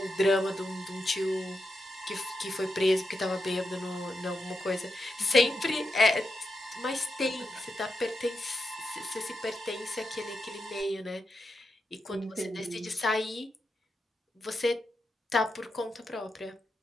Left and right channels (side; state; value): both; normal; correlation 0.86